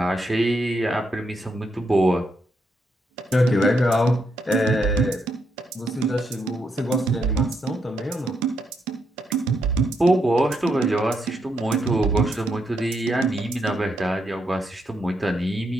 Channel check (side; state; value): both; normal; correlation 0.79